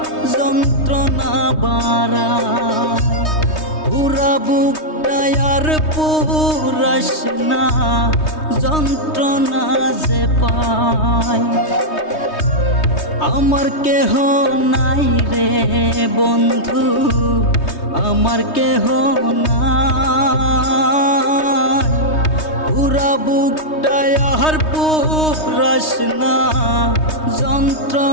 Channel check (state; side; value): late; right; 3.2 ms